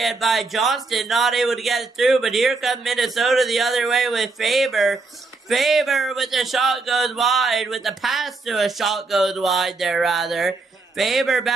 by Johnston, not able to get it through. But here comes Minnesota the other way with Faber. Faber with the shot goes wide, with the pass to a shot goes wide there, rather. Faber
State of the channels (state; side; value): quieter; left; 3.7 dB